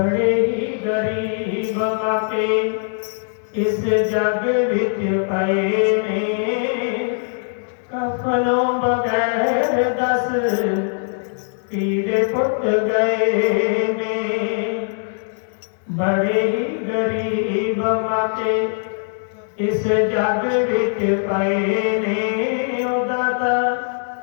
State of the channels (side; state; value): right; silent; 65 dB below the other